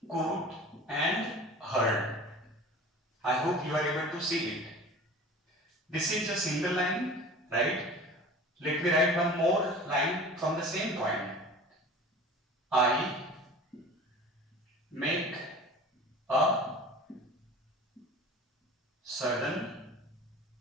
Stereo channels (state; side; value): normal; both; correlation 0.40